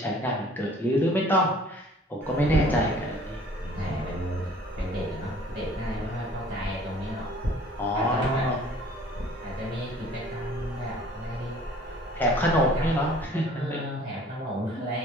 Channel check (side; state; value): both; normal; correlation 0.52